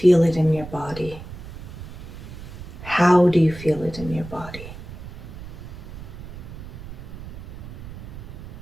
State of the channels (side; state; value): right; noise; rumble, 12 dB below the sound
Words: it in your body? How do you feel it in your body?